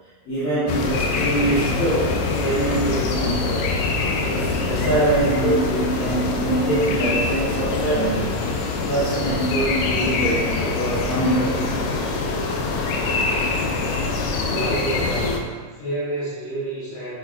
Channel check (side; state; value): right; late; 27 ms